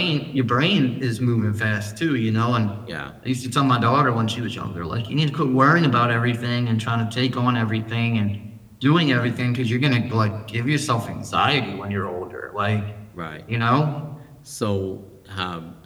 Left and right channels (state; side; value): identical; both; correlation 1.00